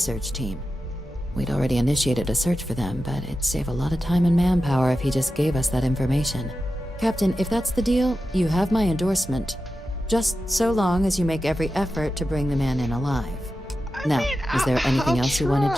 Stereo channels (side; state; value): both; normal; correlation 0.91